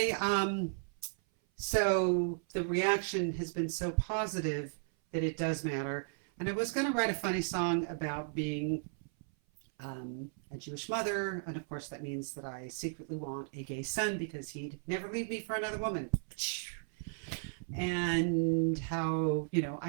so the reaction has been so positive that it does matter. And I was going to write a funny song about being a Jewish mother, and of course that means that I secretly want a gay son because he'd never leave me for another woman. And how,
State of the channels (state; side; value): silent; left; 54 dB below the other